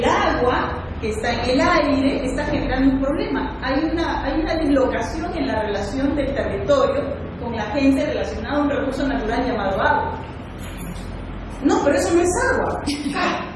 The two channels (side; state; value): both; identical; correlation 1.00